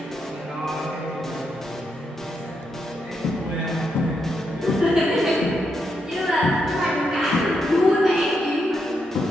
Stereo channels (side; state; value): both; normal; correlation 0.81